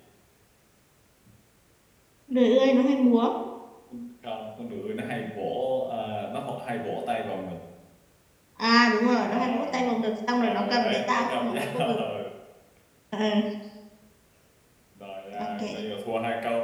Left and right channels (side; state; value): both; identical; correlation 1.00